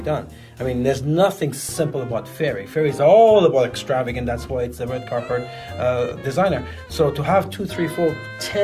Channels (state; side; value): identical; both; correlation 1.00